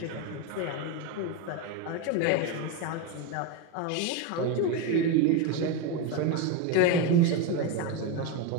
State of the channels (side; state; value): both; different; correlation 0.04